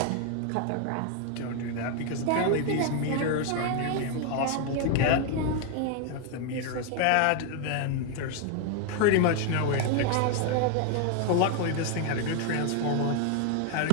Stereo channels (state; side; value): different; both; correlation 0.00